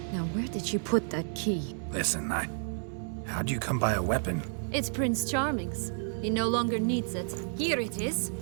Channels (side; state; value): left; silent; 57 dB below the other